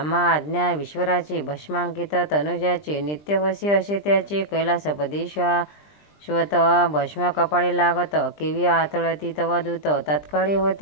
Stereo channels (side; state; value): right; late; 20 ms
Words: आज्ञा विश्वराची भस्मांकित तनुजाचे नित्यवशी असे त्याचे कैलासपदी श्वत भस्म कपाळी लागत केवी आतळती तव दूत तत्काळी